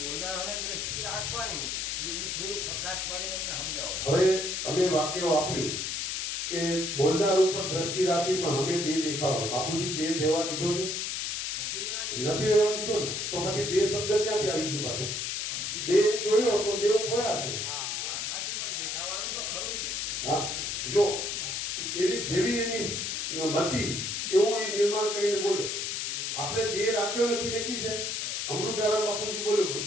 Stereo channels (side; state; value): left; noise; hiss, 2 dB below the sound